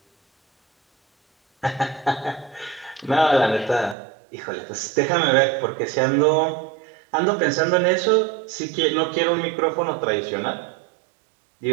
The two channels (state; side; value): drops out; left; at 4.0 s